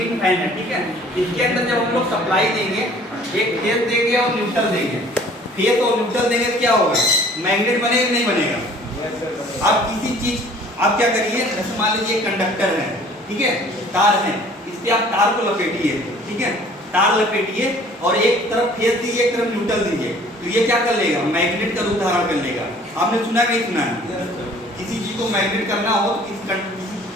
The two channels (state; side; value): normal; both; correlation 0.53